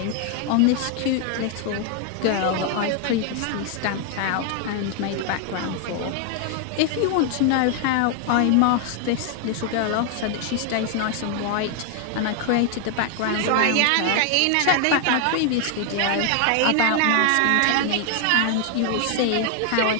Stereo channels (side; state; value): both; different; correlation 0.00